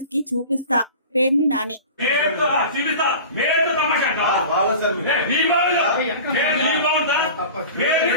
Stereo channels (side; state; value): both; inverted; correlation -0.37